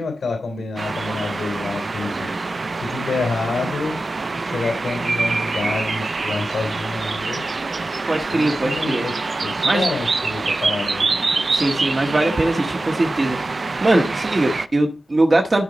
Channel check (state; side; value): normal; both; correlation 0.94